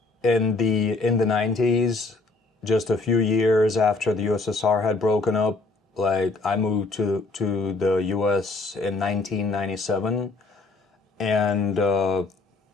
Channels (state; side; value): quieter; right; 3.5 dB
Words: in the 90s, just a few years after the USSR had broken up, like I moved to the US in 1997, and